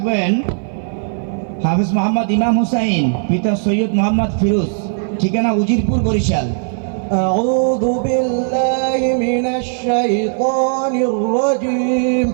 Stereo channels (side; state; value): left; silent; 57 dB below the other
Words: হাফেজ মোহাম্মদ ইমাম হুসাইন, পিতা সৈয়দ মোহাম্মদ ফিরোজ, ঠিকানা উজিরপুর বরিশাল। أعوذ بالله من الشيطان الرجيم.